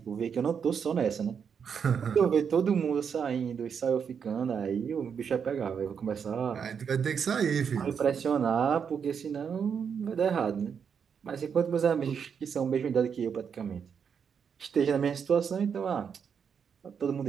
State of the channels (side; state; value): left; quieter; 7.0 dB